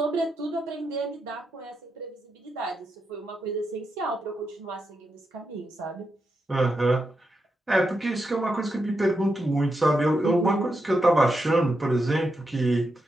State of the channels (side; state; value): both; normal; correlation 0.85